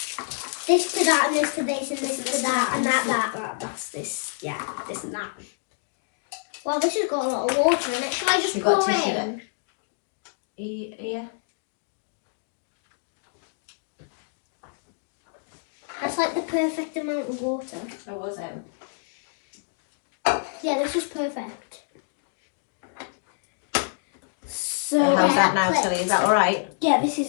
This to that, and this to this, and this to that, and that. That's this. Yeah, this and that. Well, this has got a lot of water in it. Shall I just You got pour tissue in? there? Yeah. That's like the perfect amount of water. Oh, was it? Yeah, this is perfect. So How's that now, clips. Tilly? Is that all right? yeah, this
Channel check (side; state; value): right; silent; digital silence